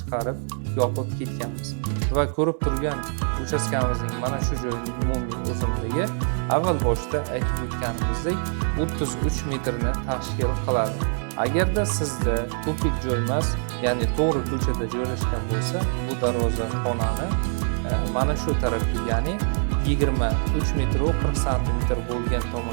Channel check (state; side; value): silent; left; 55 dB below the other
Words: yopib ketganmiz. Va ko'rib turgan uchastkamizning mana shu joyining umumiy uzunligi avval boshda aytib o'tganimizdek 33 metrni tashkil qiladi. Agarda sizda tupik joy emas, ya'ni to'g'ri ko'chada joylashgan bo'lsa, bu darvozaxonani mana shu tarafga, ya'ni 23 metr 40 santimetr bo'lgan